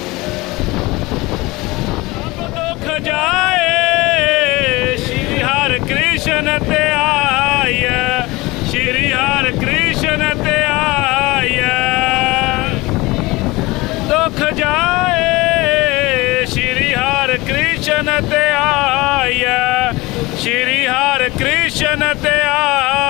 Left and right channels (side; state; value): right; quieter; 21.7 dB